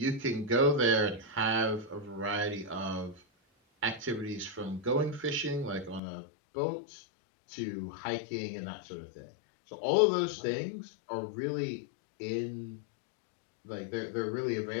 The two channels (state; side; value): drops out; right; at 6.0 s